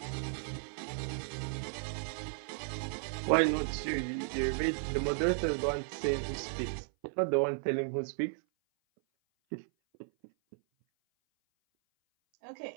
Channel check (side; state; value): left; silent; 55 dB below the other